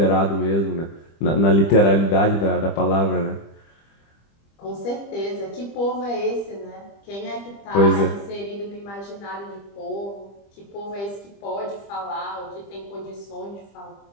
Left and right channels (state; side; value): late; right; 25 ms